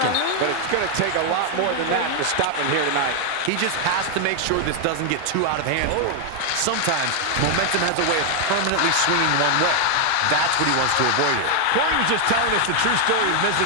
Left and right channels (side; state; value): both; different; correlation 0.00